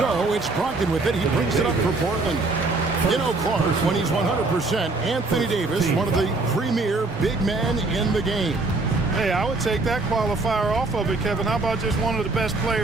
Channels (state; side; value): quieter; left; 3.4 dB